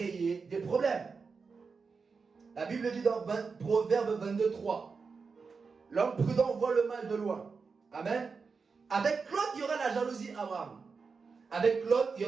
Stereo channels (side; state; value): left; quieter; 5.0 dB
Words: des problèmes. La Bible dit dans Proverbe 22, 3, l'homme prudent voit le mal de loin. Amen. Avec Lot, il y aura la jalousie, Abraham. Avec Lot, il y